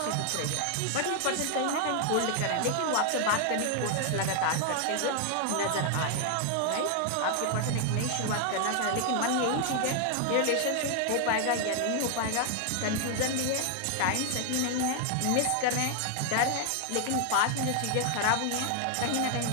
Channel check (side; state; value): both; different; correlation 0.00